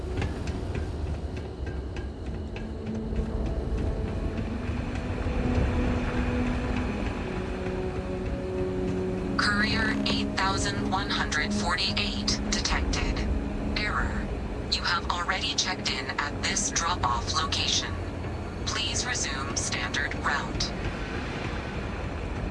Courier 8148 detected. Error. You have already checked in at this drop-off location. Please resume standard route.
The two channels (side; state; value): both; identical; correlation 1.00